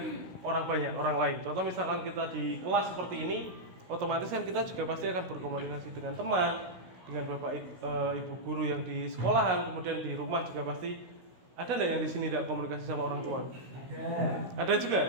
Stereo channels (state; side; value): late; left; 16 ms